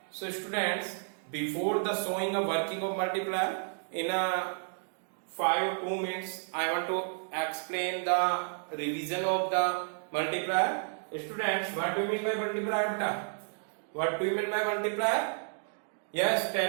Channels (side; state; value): left; silent; digital silence